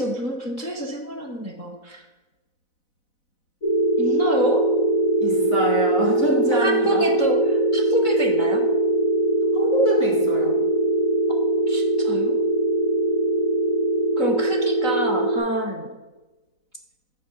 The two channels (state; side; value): late; right; 4.0 ms